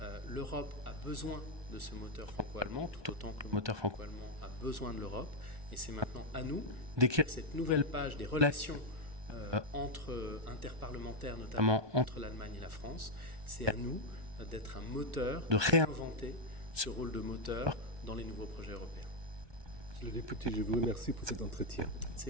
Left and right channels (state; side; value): late; left; 1.2 ms